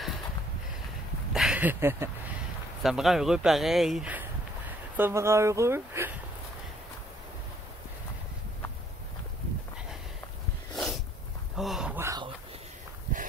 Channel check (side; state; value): both; normal; correlation 0.64